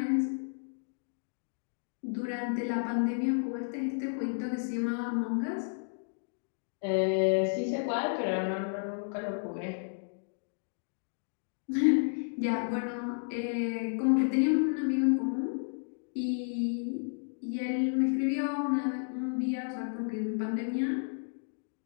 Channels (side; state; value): right; silent; digital silence